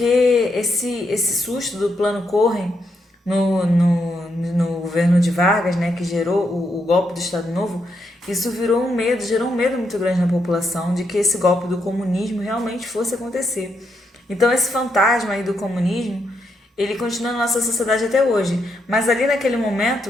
esse susto do plano Corren no governo de Vargas, né, que gerou o golpe do Estado Novo, isso gerou um medo muito grande na população de que esse golpe do comunismo realmente fosse acontecer. Então esse fantasma aí do comunismo, ele continua na nossa sociedade até hoje. Mas ali naquele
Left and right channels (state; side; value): normal; both; correlation 0.80